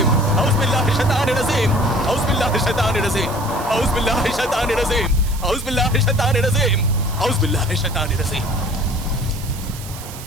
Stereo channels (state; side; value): noise; right; hiss, 14 dB below the sound